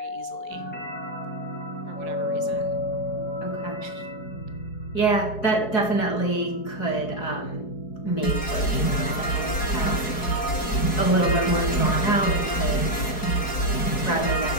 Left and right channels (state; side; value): late; right; 4.7 ms